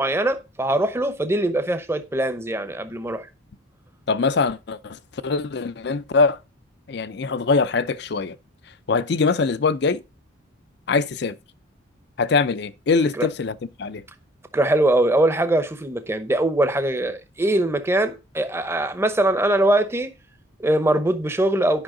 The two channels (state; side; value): normal; both; correlation 0.44